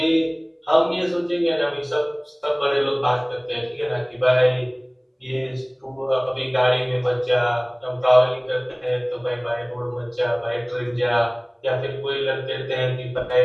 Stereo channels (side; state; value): both; identical; correlation 1.00